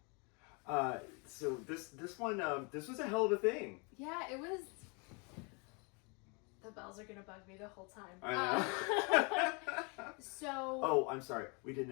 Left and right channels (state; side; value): quieter; right; 32.7 dB